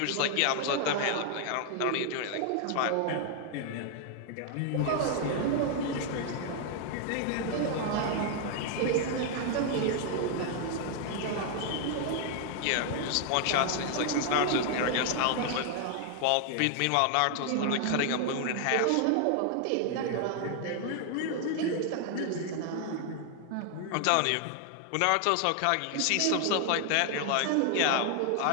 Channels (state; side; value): different; both; correlation 0.00